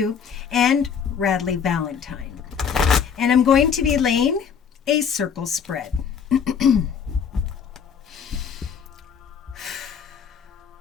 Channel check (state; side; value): quieter; right; 7.0 dB